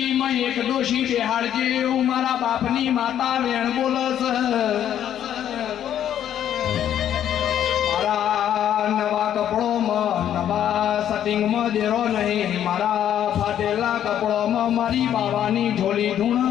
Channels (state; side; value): quieter; right; 10.4 dB